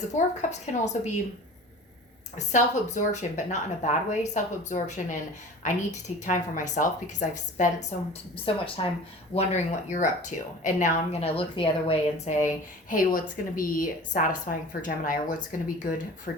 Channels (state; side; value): normal; both; correlation 0.40